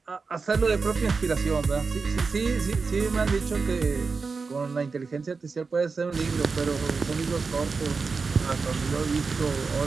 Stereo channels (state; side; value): quieter; left; 4.6 dB